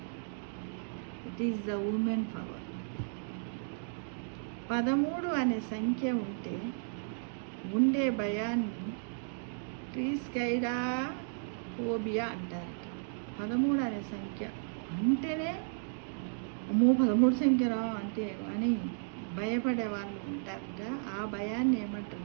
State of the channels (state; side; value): silent; left; digital silence